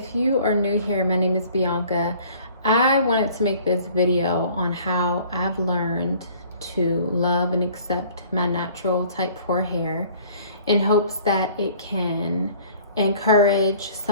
you are new here, my name is Bianca. I wanted to make this video on how I've learned to love and accept my natural type 4 hair in hopes that it can encourage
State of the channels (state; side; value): inverted; both; correlation -0.53